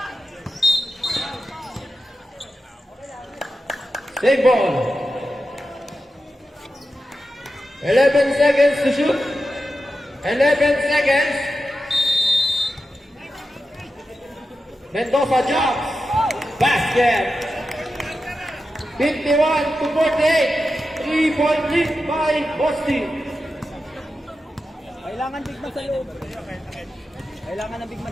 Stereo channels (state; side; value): normal; both; correlation 0.91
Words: Save ball. 11 seconds to shoot. 11 seconds. Mendoza jumps. Basket. 51 to 48. 3-point lead by Boston. Kailangan big man sa loob. Kailangan ng big